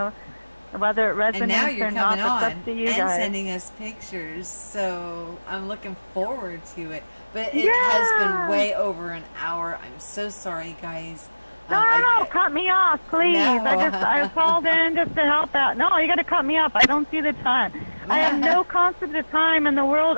Whether it resonates and now you're or not, coming on it's up to you and guys. sending us pictures, so I'm looking forward to it. But it has been way over an hour. I'm so sorry, guys. No, cut me off, please. No. I called in just to help out. No, you got to cut me off. I don't see the time. I have no concept of time in the world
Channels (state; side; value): inverted; both; correlation -1.00